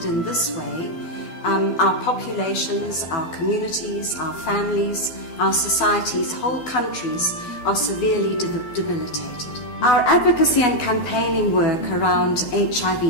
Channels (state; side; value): late; right; 12 ms